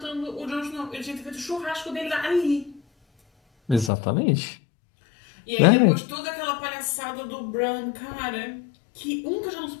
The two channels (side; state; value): right; drops out; at 3.9 s